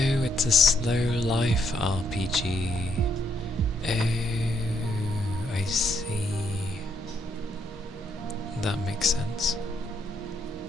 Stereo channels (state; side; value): normal; both; correlation 0.74